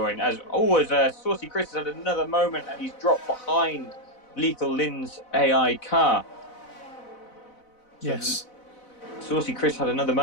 As always, Saucy Chris has had another moment, and he's dropped behind Lethal Lin's AI car. So Yes. Saucy Chris had another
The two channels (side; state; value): right; late; 4.0 ms